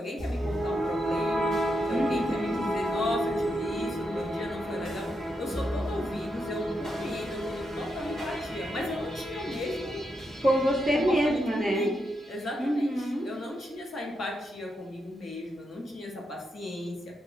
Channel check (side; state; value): both; normal; correlation 0.83